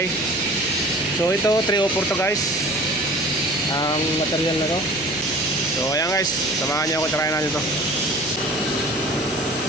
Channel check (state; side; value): noise; right; hum, 24 dB below the sound